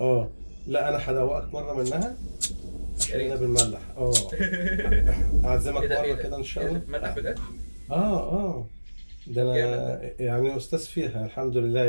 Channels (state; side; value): inverted; both; correlation -1.00